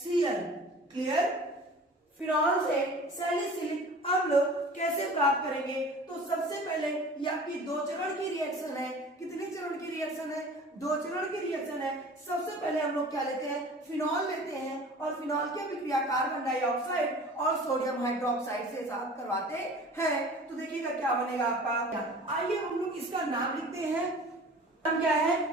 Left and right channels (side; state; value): both; normal; correlation 0.43